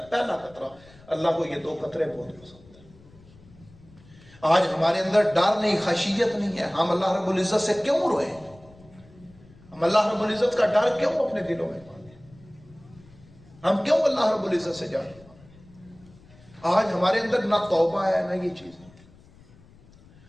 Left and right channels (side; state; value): left; noise; rumble, 25 dB below the sound